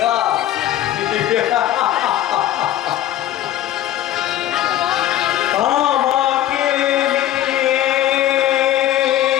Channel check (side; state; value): right; quieter; 12.8 dB